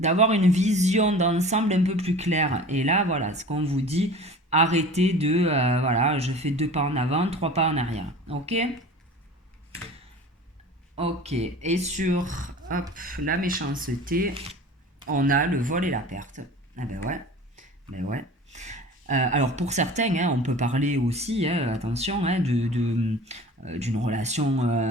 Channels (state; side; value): normal; both; correlation 0.40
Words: une vision d'ensemble un peu plus claire. Et là, voilà, ce qu'on vous dit, arrêtez de, voilà, je fais 2 pas en avant, 3 pas en arrière. Ok? Ok. Et sur, hop, la méchanceté, on a le vol et la perte. Ah ben ouais, ben ouais. Alors pour certains, hein, on peut parler aussi, hein, attention, hein, d'une